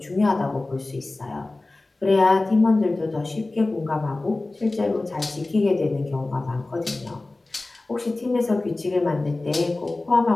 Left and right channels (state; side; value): quieter; right; 3.1 dB